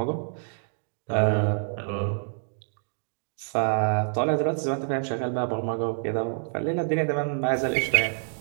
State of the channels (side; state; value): left; silent; digital silence